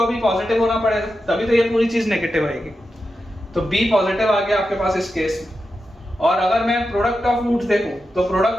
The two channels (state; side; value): normal; both; correlation 0.89